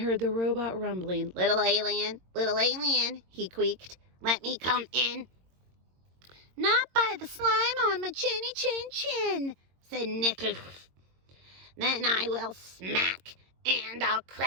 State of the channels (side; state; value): left; late; 22 ms